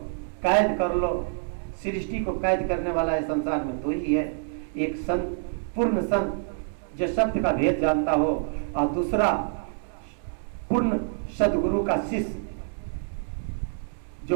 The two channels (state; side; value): silent; left; 60 dB below the other